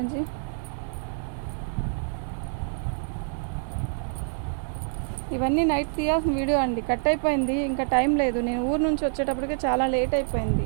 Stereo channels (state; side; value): silent; left; digital silence